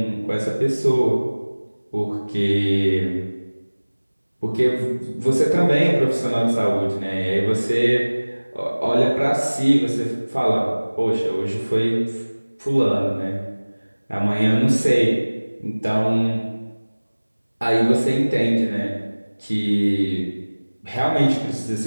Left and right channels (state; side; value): inverted; both; correlation -1.00